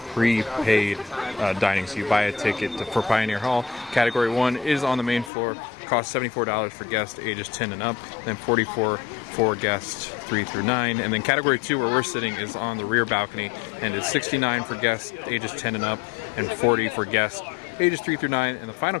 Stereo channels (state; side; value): drops out; right; at 5.3 s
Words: prepaid dining, so you buy a ticket for Pioneer Hall. Category 1 is on the main floor, costs $74 for guests ages 10 and up, then $44 for guests 3 through 9, and then Category 2, where we're sitting, is on the rear balcony, and it's $69 for guests ages 10 and up, and $40 for guests ages 3 through 9, and the final